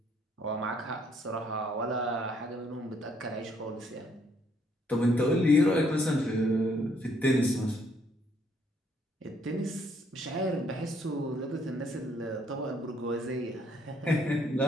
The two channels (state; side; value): normal; both; correlation 0.68